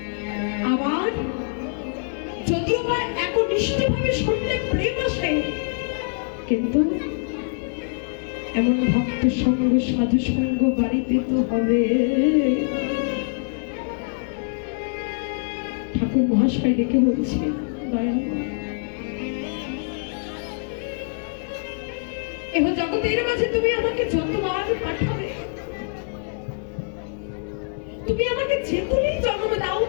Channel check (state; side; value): silent; right; 62 dB below the other